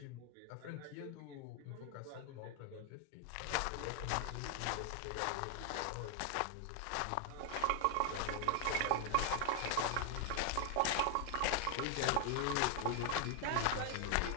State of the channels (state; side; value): different; both; correlation 0.00